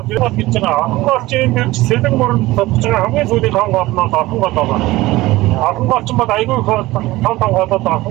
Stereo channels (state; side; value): quieter; left; 18.5 dB